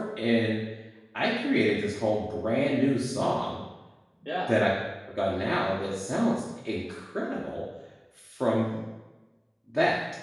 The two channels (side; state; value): both; identical; correlation 1.00